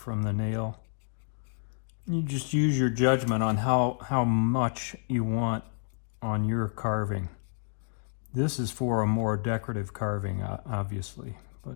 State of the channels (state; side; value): silent; right; digital silence